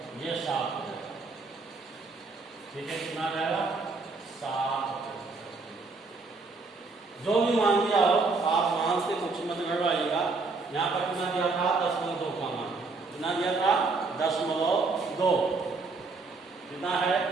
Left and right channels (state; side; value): quieter; left; 4.0 dB